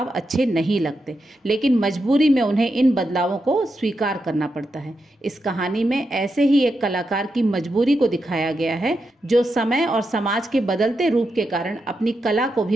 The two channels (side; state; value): both; normal; correlation 0.86